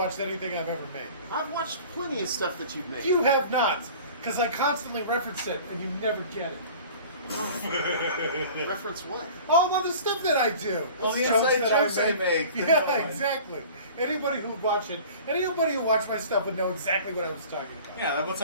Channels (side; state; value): both; inverted; correlation -0.43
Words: anything I've ever made. I've watched plenty of stuff that you've made. You have not, because I constantly reference it, and you never get it. Reference what? All of the stuff that I do. Well, the Jokes inside that I jokes I make. Yeah, exactly. Anybody who would watch it, anybody who watched my stuff would know exactly what I was talking about. Yeah, that one